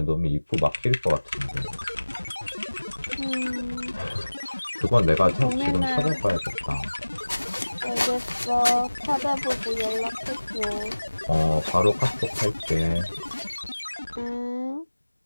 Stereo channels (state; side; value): inverted; both; correlation -1.00